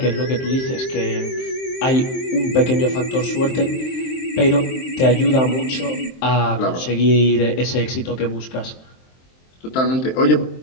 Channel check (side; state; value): right; late; 23 ms